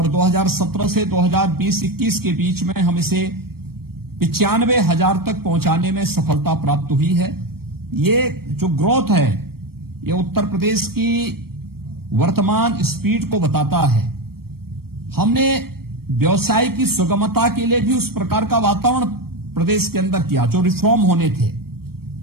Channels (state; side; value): late; left; 0.94 ms